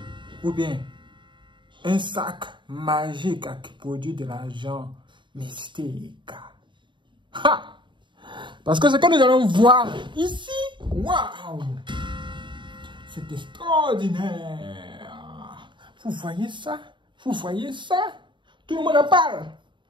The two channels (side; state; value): left; late; 0.23 ms